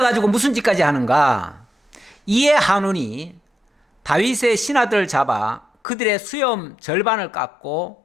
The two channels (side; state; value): right; drops out; at 5.7 s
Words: 무슨 짓까지 하는가? 이에 한운이 다윗의 신하들을 잡아 그들의 수염 절반을